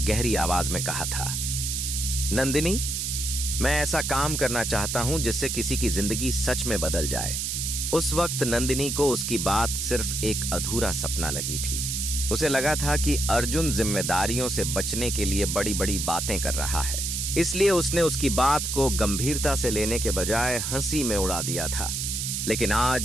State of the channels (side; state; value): right; noise; hiss, 2 dB below the sound